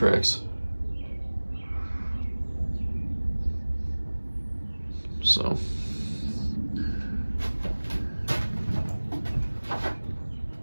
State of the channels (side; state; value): both; inverted; correlation -1.00